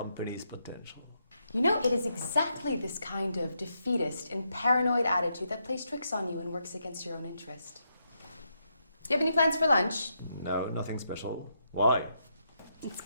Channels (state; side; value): inverted; both; correlation -0.80